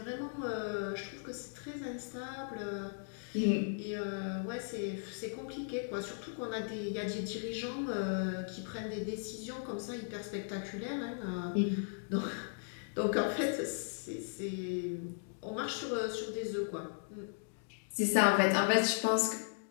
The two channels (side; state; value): right; silent; digital silence